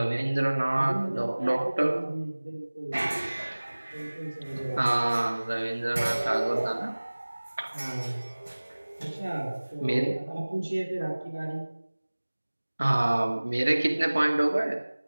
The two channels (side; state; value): both; inverted; correlation -1.00